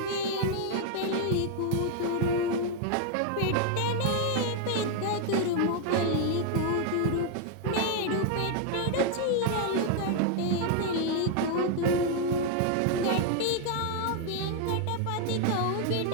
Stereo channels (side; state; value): both; different; correlation 0.00